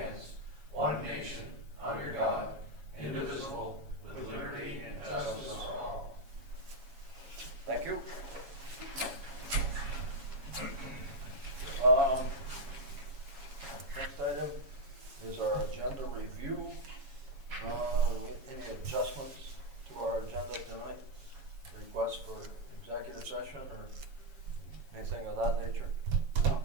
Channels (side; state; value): left; late; 7.2 ms